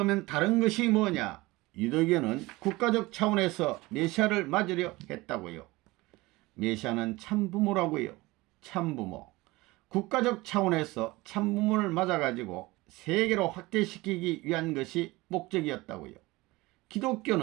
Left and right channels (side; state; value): left; quieter; 21.1 dB